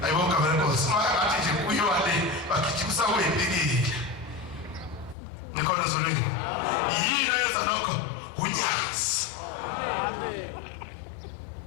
ayibonga benkosi ngathi nje kuyiwale bakithumisa kuyibikile nikhona zolweni yini yenza lokho unyazi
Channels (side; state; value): right; drops out; at 5.2 s